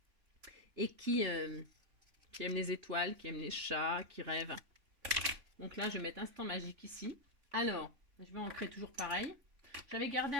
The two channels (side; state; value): left; late; 3.5 ms